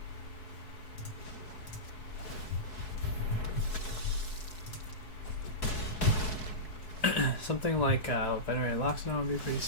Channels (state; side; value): late; right; 4.7 ms